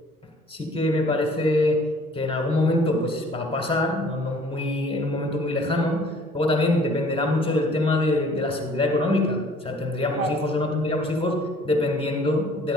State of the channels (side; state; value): both; normal; correlation 0.54